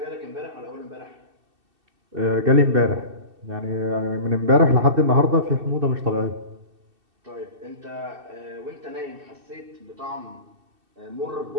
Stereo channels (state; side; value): late; left; 2.7 ms